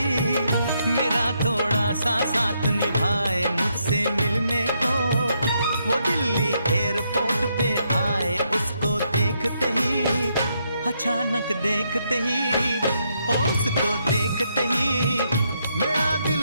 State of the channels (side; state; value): both; inverted; correlation -0.77